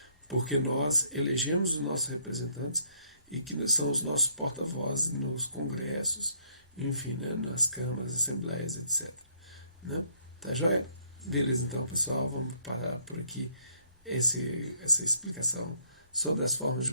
porque nós elegemos os nossos representantes e que são os nossos porta-vozes nos congressos, enfim, né, nas câmaras, assembleias, etc. Né? Tá joia? Beleza, então, pessoal, vamos parar por aqui essa explicação sobre as formas de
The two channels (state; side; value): inverted; both; correlation -0.67